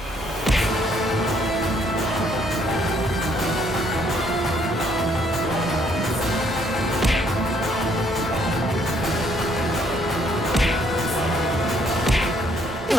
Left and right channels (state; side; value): normal; both; correlation 0.67